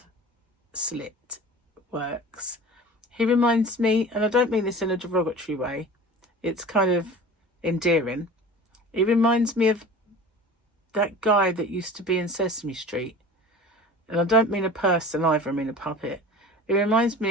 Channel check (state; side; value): normal; both; correlation 0.39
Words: slit works, he reminds me, and I don't mean this in a derogatory way, it's kind of endearing. He reminds me of that guy that used to be in Sesame Street. And I don't mean a person either, I mean a puppet. It reminds